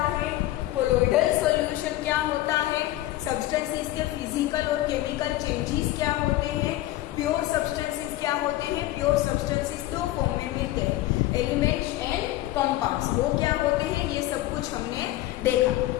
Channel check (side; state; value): right; quieter; 16.0 dB